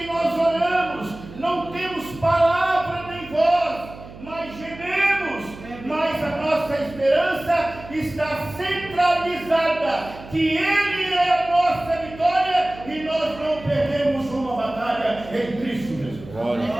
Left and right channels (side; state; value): right; noise; hum, 16 dB below the sound